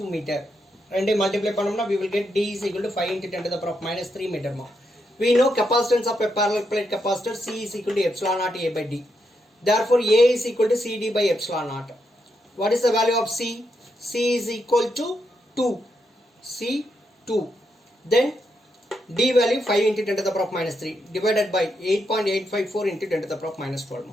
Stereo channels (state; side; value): normal; both; correlation 0.81